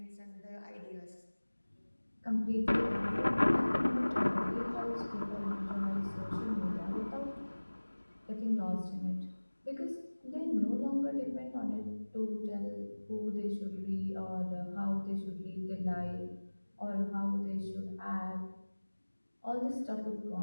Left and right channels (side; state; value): both; inverted; correlation -1.00